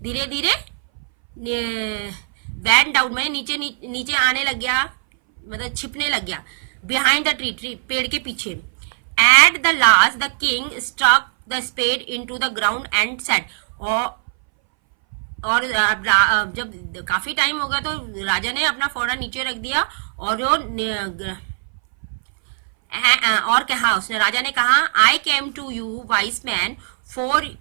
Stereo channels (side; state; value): left; silent; 61 dB below the other